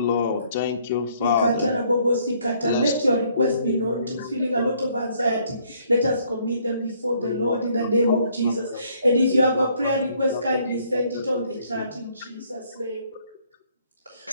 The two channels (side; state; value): both; inverted; correlation -0.65